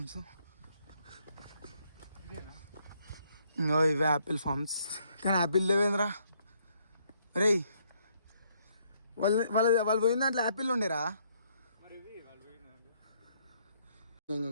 ఇంకో ఇవే యాపిల్ ఫార్మ్స్. కానీ యాపిల్ లేవేంద్రా రే. వాళ్ళు పోయిన దాంట్లో యాపిల్ ఉండేరా?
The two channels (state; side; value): inverted; both; correlation -0.70